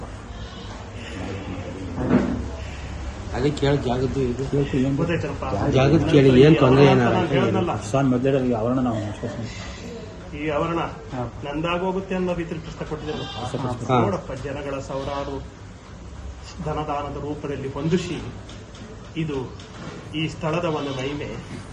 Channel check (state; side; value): identical; both; correlation 1.00